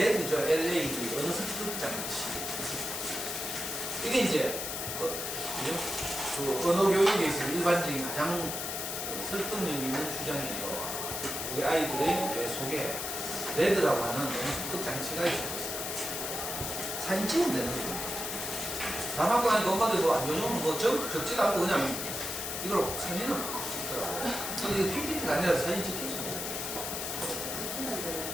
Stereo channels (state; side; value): noise; left; hiss, 4 dB below the sound